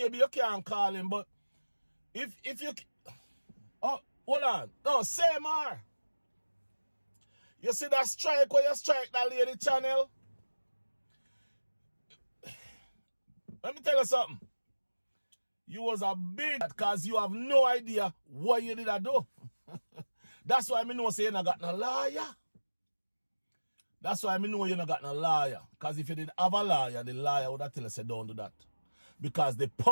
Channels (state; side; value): inverted; both; correlation -1.00